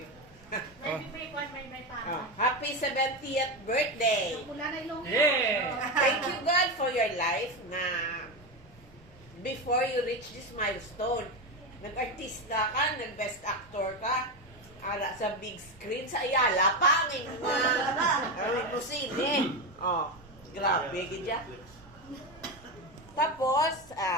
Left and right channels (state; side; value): normal; both; correlation 0.15